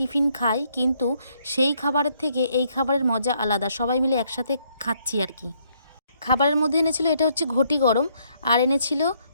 খাই, কিন্তু সেই খাবারের থেকে এই খাবারের মজা আলাদা, সবাই মিলে একসাথে খাচ্ছি আর কি। খাবারের মধ্যে এনেছিল, এটা হচ্ছে ঘটি গরম, আর এনেছিল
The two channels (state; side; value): inverted; both; correlation -0.70